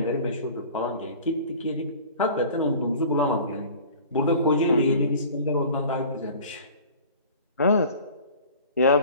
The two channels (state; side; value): inverted; both; correlation -0.43